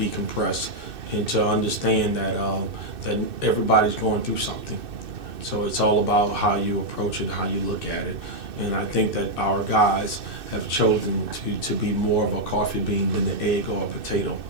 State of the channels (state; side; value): late; left; 2.6 ms